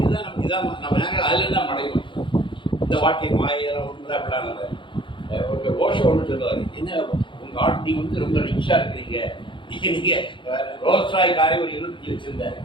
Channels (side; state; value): right; late; 0.24 ms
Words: நம்ம நேரங்கள் அதில் தான் மடையும். இந்த வாழ்க்கை மாயெல்லாம் ஒன்று அப்படிலாம் இல்லை. ஒரு ஓஷோ ஒன்று சொல்லுவார், என்ன உங்கள் ஆள் நீங்கள் வந்து ரொம்ப ரிச்சாக இருக்கிறீங்க, நீங்கள் ரோல்ஸ் ராய் காரை ஒரு 20 வச்சுருந்தாரு,